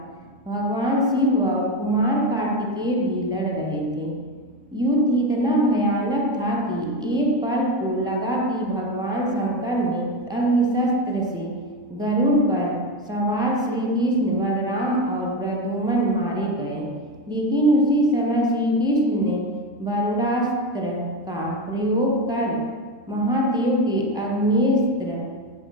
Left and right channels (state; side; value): normal; both; correlation 0.17